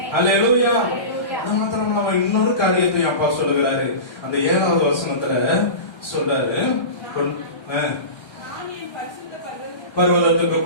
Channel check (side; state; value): right; late; 1.3 ms